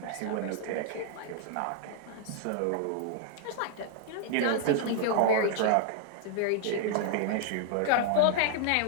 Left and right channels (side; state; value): both; different; correlation -0.01